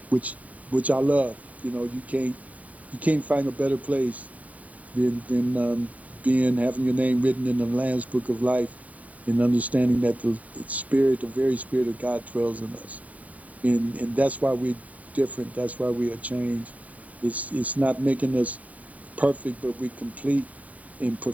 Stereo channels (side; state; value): left; late; 0.070 ms